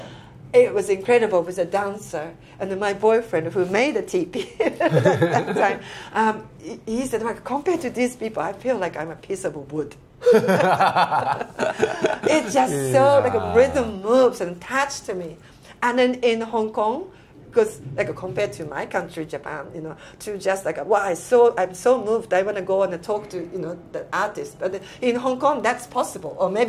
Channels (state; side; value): identical; both; correlation 1.00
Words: it was incredible with a dancer. And then my boyfriend, who made a teepee at that time, he said, like, compared to these people, I feel like I'm a piece of wood. It's just so, like, a rhythm moves and attached to me. And then in Hong Kong, because like compared to my country, Japan, to just like, wow, I'm so moved. I want to go and talk to the artist. But in Hong Kong, that's possible, or